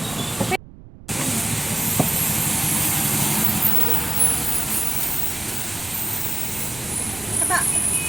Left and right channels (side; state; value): right; noise; rumble, 19 dB below the sound